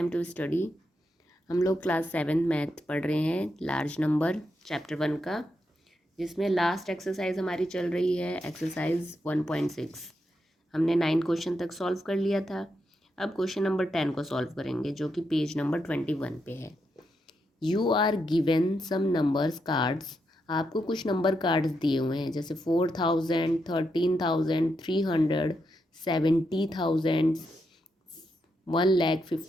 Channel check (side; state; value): both; normal; correlation 0.83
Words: to study. हम लोग class 7 math पढ़ रहे हैं, लार्ज नंबर चैप्टर 1 का, जिसमें लास्ट एक्सरसाइज हमारी चल रही है एक्सरसाइज 1.6। हमने 9 क्वेश्चन तक सॉल्व कर लिया था। अब क्वेश्चन नंबर 10 को सॉल्व करेंगे, जो कि पेज नंबर 21 पे है। You are given some numbers cards. आपको कुछ नंबर कार्ड्स दिए हुए हैं, जैसे 4000, 13,000, 300, 70,000,